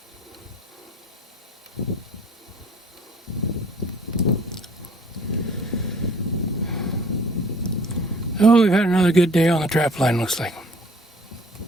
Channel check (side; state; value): both; normal; correlation 0.54